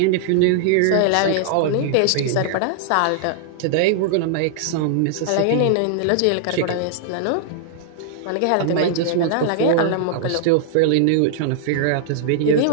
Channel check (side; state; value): both; different; correlation -0.01